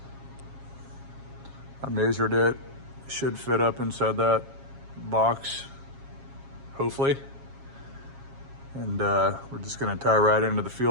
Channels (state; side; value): late; left; 7.3 ms